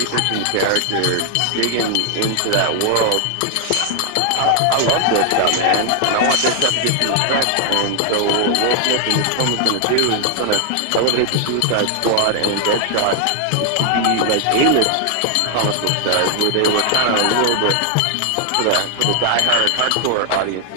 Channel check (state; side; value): different; both; correlation 0.00